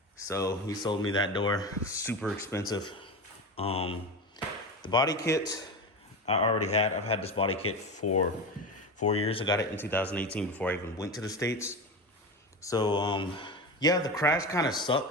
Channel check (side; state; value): both; normal; correlation 0.24